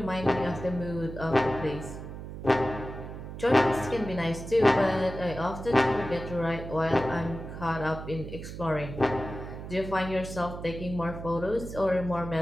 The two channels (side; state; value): right; noise; hum, 10 dB below the sound